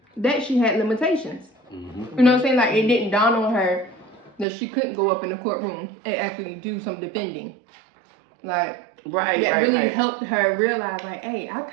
that she had limitations. You know what I'm saying? Like, it didn't dawn on her that she couldn't go up in the courtroom and actually do some defending. Like, that really helped her realize, like, hey, I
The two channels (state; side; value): drops out; left; at 4.5 s